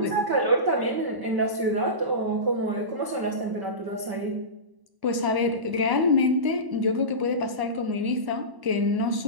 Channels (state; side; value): late; left; 1.0 ms